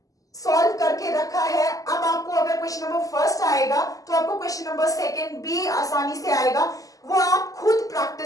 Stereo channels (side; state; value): right; late; 0.17 ms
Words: सॉल्व करके रखा है। अब आपको अगर क्वेश्चन नंबर फर्स्ट आएगा तो आपको क्वेश्चन नंबर सेकंड भी आसानी से आएगा, वो आप खुद